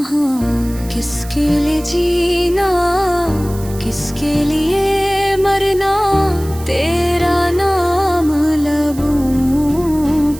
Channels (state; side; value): noise; right; hiss, 18 dB below the sound